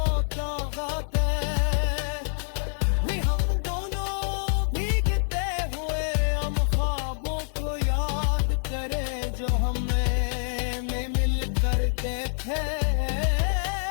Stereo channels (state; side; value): silent; right; digital silence